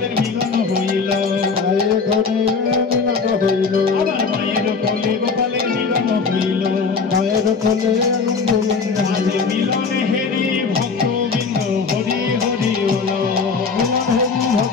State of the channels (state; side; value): quieter; right; 4.9 dB